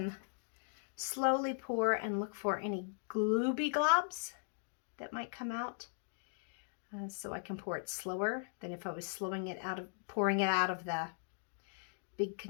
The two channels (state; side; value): silent; right; digital silence